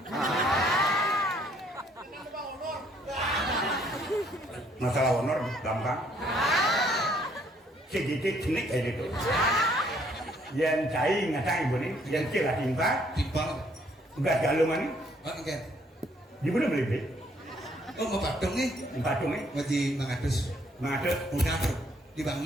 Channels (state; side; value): normal; both; correlation 0.66